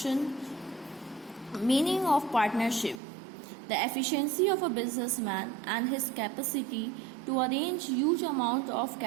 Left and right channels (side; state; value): left; drops out; at 3.0 s